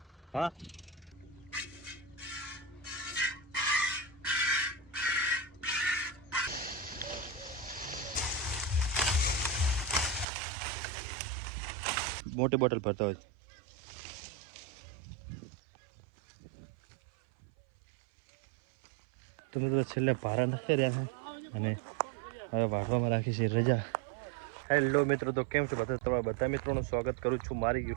હા, મોટી બોટલ ભરતા હોય. તો મિત્રો છેલ્લે ભારા નાખી રહ્યા છે અને હવે વાગવામાં રાખી છે રજા. હેલો મિત્રો, તો કેમ છો બધા? તમારા બધા મિત્રોનું સ્વાગત કરું છું મારી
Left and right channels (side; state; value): left; drops out; at 10.2 s